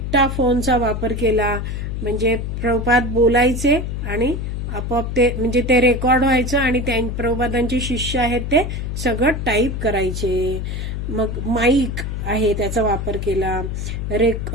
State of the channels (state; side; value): noise; left; hum, 4 dB below the sound